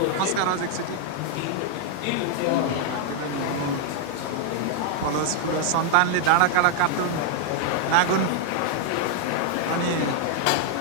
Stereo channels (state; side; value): different; both; correlation 0.00